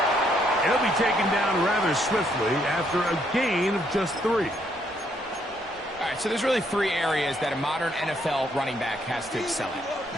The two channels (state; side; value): normal; both; correlation 0.72